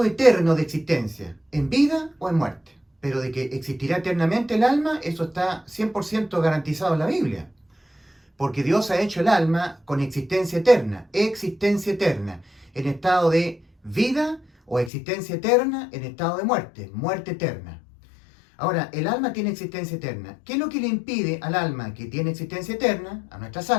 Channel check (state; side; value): drops out; right; at 14.9 s